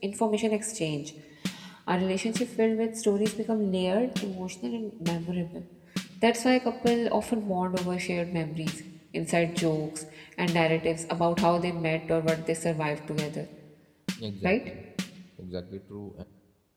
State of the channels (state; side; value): identical; both; correlation 1.00